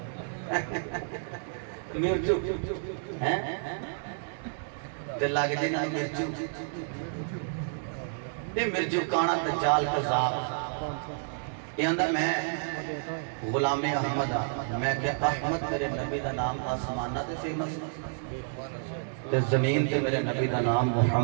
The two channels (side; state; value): left; silent; digital silence